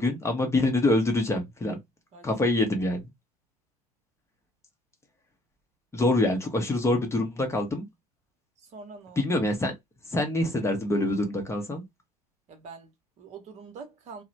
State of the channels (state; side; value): normal; both; correlation 0.63